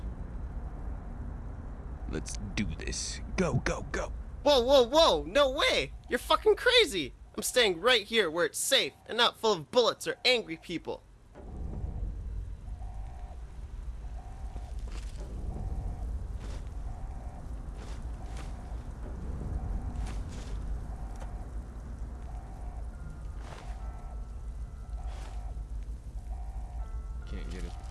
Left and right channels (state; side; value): identical; both; correlation 1.00